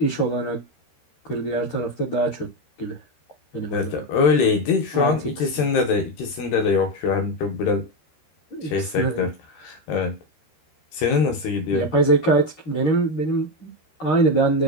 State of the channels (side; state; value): right; late; 13 ms